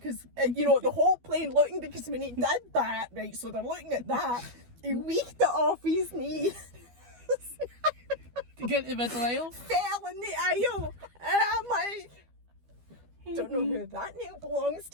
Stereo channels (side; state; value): left; late; 12 ms